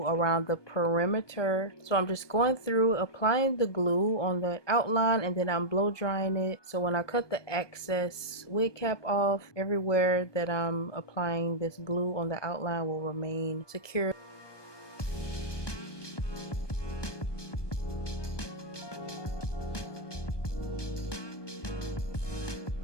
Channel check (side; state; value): right; late; 1.2 ms